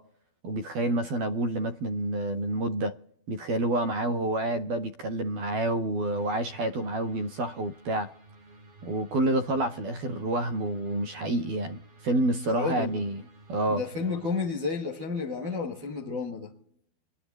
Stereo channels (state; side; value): late; left; 12 ms